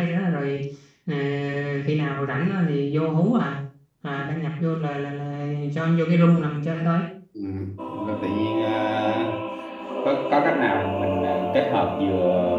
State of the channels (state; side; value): identical; both; correlation 1.00